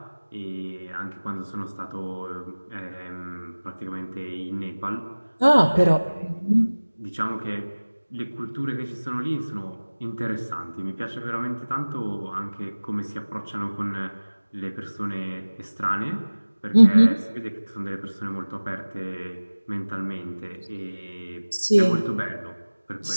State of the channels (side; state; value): both; inverted; correlation -1.00